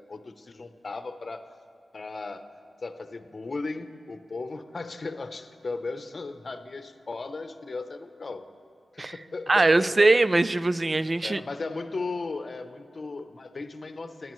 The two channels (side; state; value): both; normal; correlation 0.96